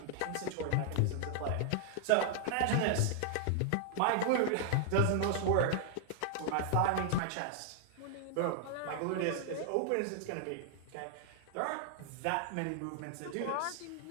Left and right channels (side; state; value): both; different; correlation 0.00